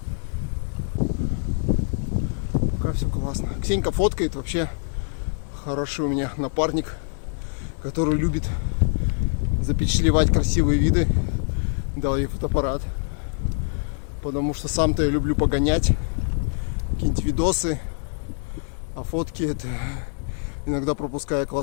Пока все классно. Ксенька фоткает, вообще хороший у меня напарник, который любит запечатлевать красивые виды. Дал ей фотоаппарат. Потому что сам-то я люблю погонять. Какие-нибудь видосы. А фотки это иногда пропуская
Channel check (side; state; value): right; silent; 62 dB below the other